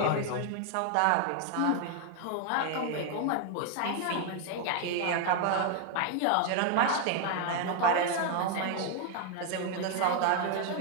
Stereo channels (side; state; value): both; different; correlation 0.00